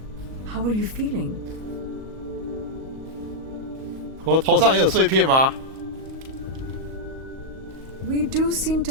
How are you feeling? 我头上也有碎片吗？ We do seem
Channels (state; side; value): late; left; 38 ms